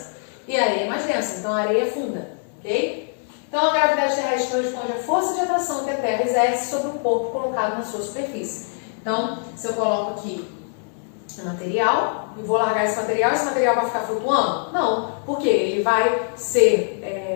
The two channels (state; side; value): silent; right; 63 dB below the other